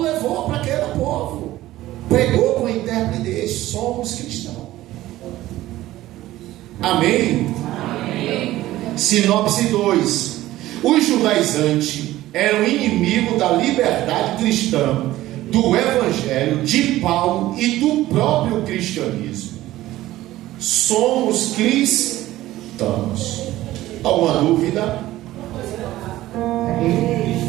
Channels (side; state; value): left; quieter; 15.7 dB